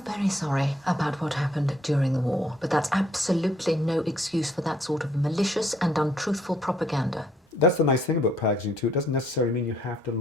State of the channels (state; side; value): normal; both; correlation 0.66